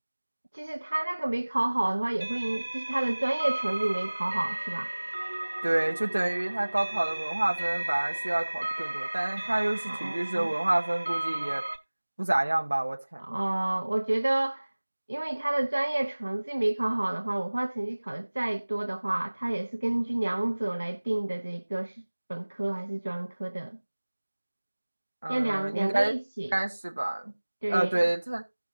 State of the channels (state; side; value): inverted; both; correlation -1.00